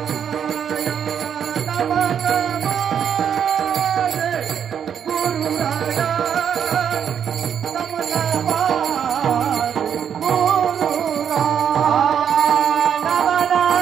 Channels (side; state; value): left; quieter; 8.3 dB